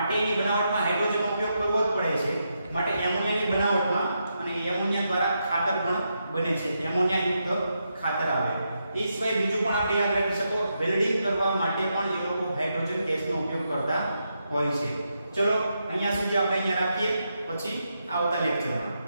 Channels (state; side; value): inverted; both; correlation -0.84